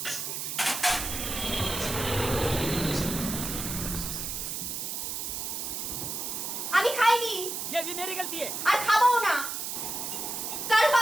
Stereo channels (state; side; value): noise; right; hiss, 4 dB below the sound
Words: আমি খাইনি। ये भी मेरी गलती है। আর খাবো না। কারো